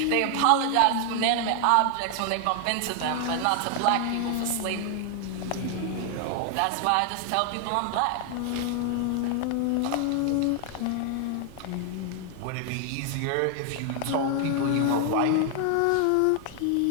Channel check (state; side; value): different; both; correlation 0.00